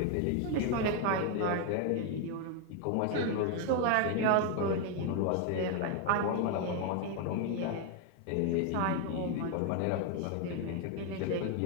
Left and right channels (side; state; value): both; different; correlation 0.01